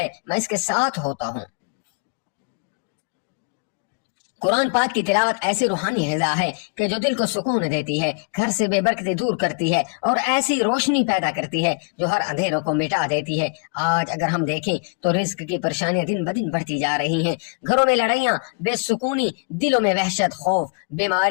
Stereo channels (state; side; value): quieter; right; 34.5 dB